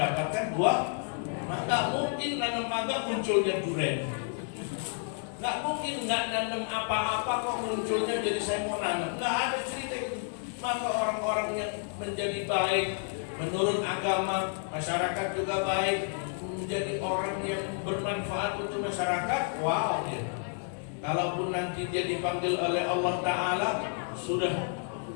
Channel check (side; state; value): right; silent; 57 dB below the other